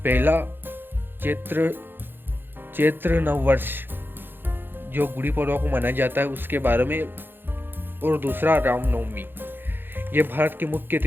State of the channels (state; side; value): late; left; 0.099 ms